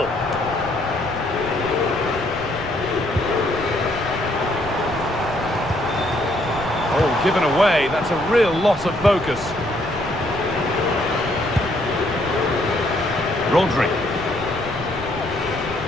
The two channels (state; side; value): noise; left; rumble, 14 dB below the sound